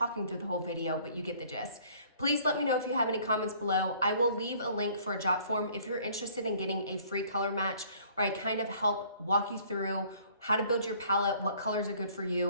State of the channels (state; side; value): inverted; both; correlation -0.56